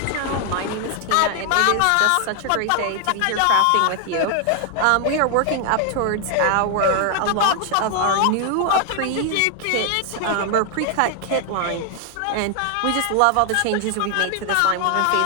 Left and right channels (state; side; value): different; both; correlation 0.00